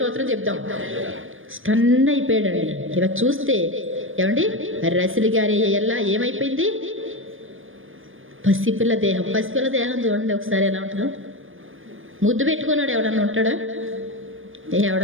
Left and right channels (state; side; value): late; left; 0.59 ms